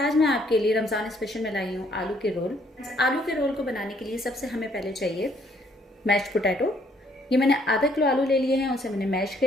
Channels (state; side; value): normal; both; correlation 0.66